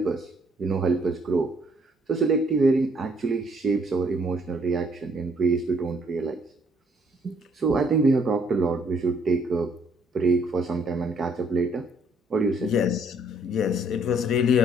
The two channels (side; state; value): both; normal; correlation 0.65